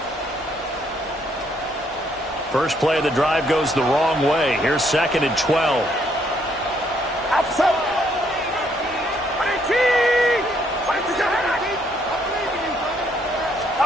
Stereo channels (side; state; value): both; normal; correlation 0.70